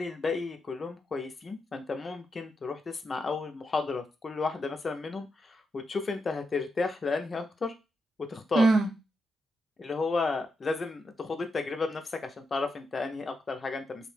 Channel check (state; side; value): normal; both; correlation 0.85